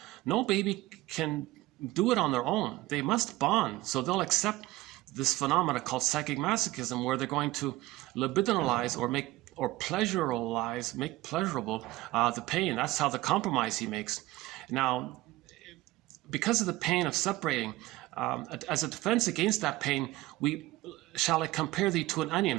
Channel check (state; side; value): quieter; left; 18.3 dB